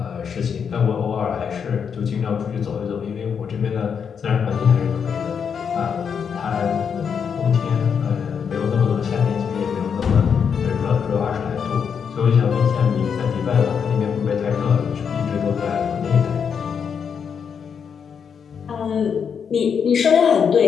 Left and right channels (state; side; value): quieter; right; 6.9 dB